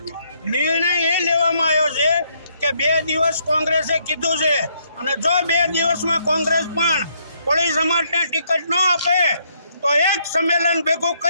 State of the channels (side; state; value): both; inverted; correlation -0.71